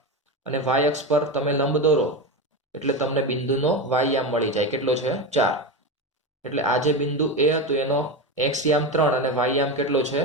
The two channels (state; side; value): normal; both; correlation 0.18